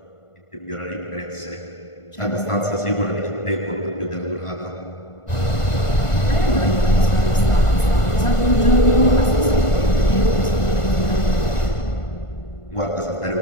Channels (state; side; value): late; right; 1.5 ms